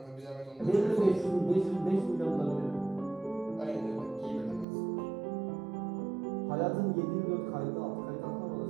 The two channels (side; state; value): left; drops out; at 4.7 s